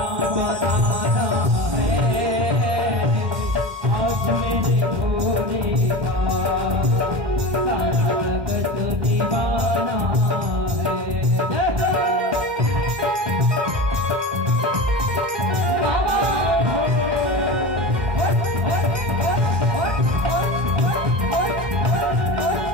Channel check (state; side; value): late; left; 2.1 ms